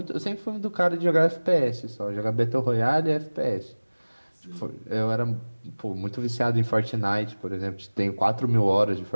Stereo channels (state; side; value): inverted; both; correlation -1.00